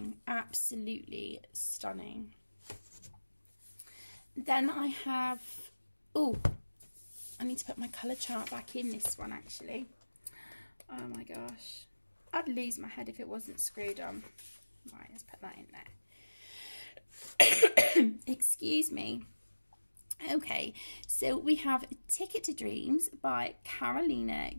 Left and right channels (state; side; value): inverted; both; correlation -1.00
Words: absolutely stunning. Then I have, oh, I need to put my colour chart back in this one actually. Oh my gosh, I'd lose my head if it wasn't screwed on. Right, let's put that in there. Excuse me. Okay, so we have Ticket to Dreams by